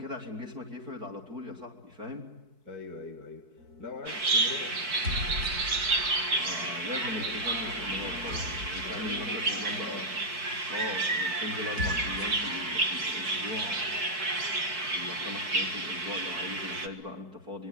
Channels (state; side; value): late; left; 4.6 ms